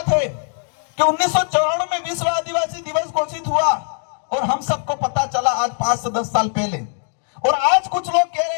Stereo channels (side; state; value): right; silent; 56 dB below the other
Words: है कि 1994 में विश्व आदिवासी दिवस घोषित हुआ और हम सबको पता चला आज 5 से 10 साल पहले, और आज कुछ लोग कह